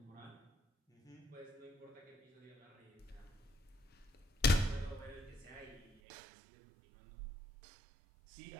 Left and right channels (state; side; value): drops out; left; at 6.0 s